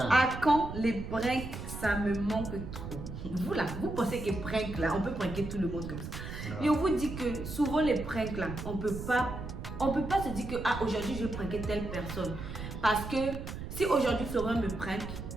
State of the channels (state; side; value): noise; right; rumble, 8 dB below the sound